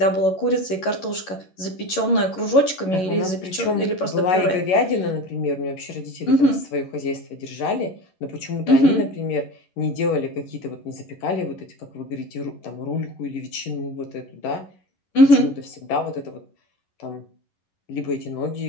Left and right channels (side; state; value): right; late; 11 ms